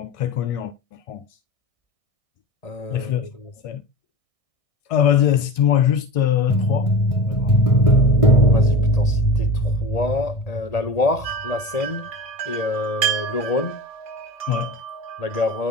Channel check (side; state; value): right; late; 1.6 ms